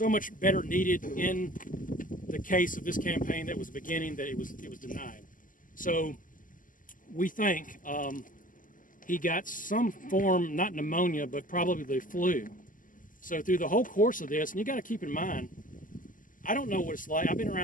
much better needed in the case of this campaign that was beginning that it was denied. So we think he got some form, not pneumonia, but probably the flu. So through the whole course of this, and you got to keep in mind, I don't know what it's like. I've been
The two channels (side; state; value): right; late; 0.38 ms